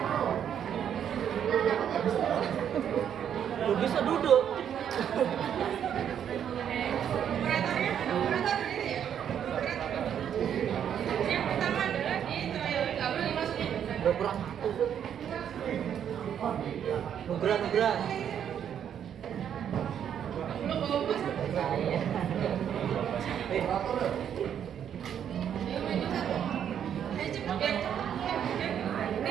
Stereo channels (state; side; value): quieter; left; 9.0 dB